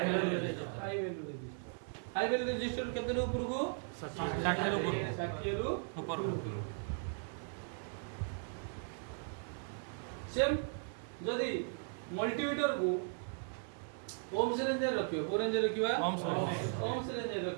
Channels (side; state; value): left; silent; 53 dB below the other